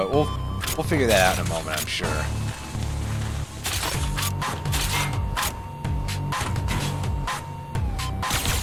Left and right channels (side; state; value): both; identical; correlation 1.00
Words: we'll figure that out in a moment, I'm sure.